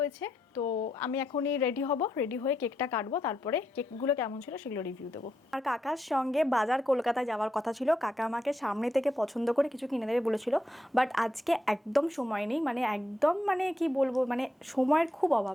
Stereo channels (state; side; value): normal; both; correlation 0.82